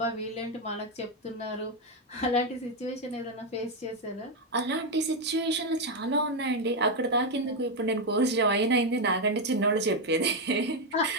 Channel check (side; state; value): both; normal; correlation 0.04